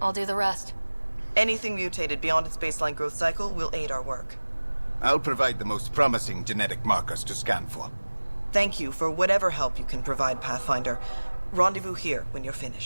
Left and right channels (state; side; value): inverted; both; correlation -1.00